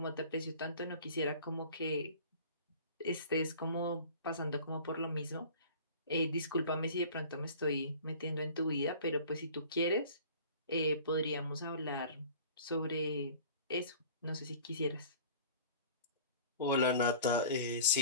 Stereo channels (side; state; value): both; inverted; correlation -0.44